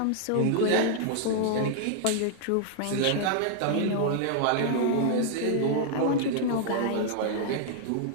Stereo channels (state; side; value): different; both; correlation 0.00